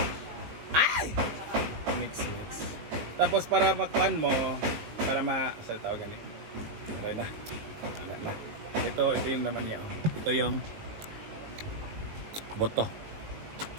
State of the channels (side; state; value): left; late; 19 ms